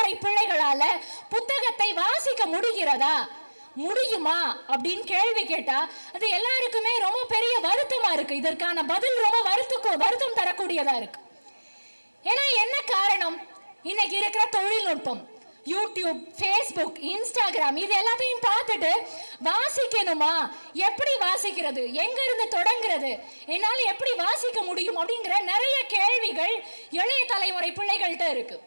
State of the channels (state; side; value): inverted; both; correlation -1.00